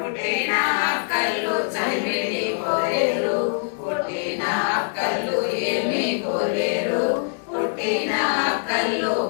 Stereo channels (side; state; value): right; silent; digital silence